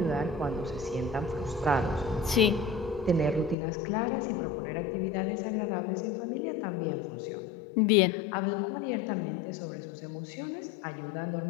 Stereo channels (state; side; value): drops out; right; at 3.6 s